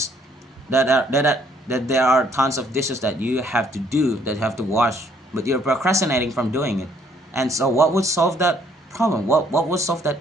that there are tons of dishes that you have to do, that you have to wash, but you're procrastinating from doing it. And so what would solve that problem? What would solve that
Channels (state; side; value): normal; both; correlation 0.65